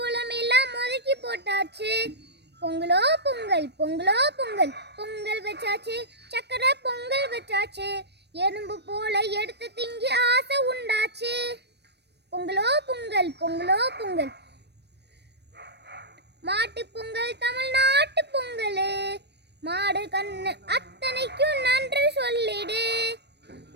எல்லாம் ஒதுக்கி போட்டாச்சு. பொங்கலோ பொங்கல் பொங்கலோ பொங்கல் பொங்கல் வச்சாச்சு. சக்கரை பொங்கல் வச்சாச்சு. எறும்பு போல எடுத்து திங்கி ஆசை உண்டாச்சு. பொங்கலோ பொங்கல் பொங்கலோ பொங்கல். மாட்டு பொங்கல் தமிழ்நாட்டு பொங்கல். மாடு கண்ணு அத்தனைக்கும் நன்றி சொல்லிடு.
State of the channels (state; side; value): late; left; 0.49 ms